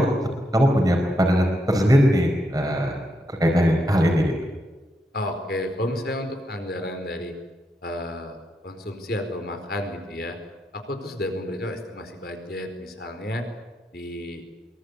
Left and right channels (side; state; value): both; normal; correlation 0.82